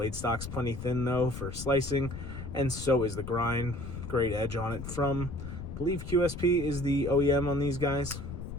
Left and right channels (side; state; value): left; noise; rumble, 8 dB below the sound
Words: stock's plenty thin though for slicing, and so is the grind. Great edge on it from, I believe QSP is the OEM on these guys.